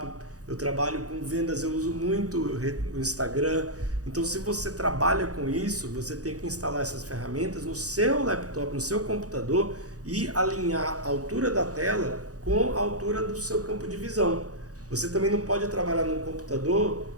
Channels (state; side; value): late; left; 0.67 ms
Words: eu trabalho com vendas, eu uso muito o Instagram. Então, se você trabalha com isso, você tem que instalar essas ferramentas no seu laptop, no seu computador e alinhar a altura da tela com a altura do seu campo de visão. Você também não pode trabalhar num computador